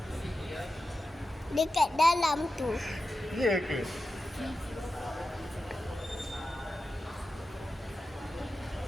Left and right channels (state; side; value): normal; both; correlation 0.92